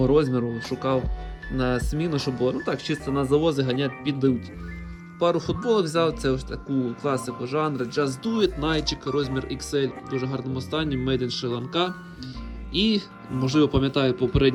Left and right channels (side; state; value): both; identical; correlation 1.00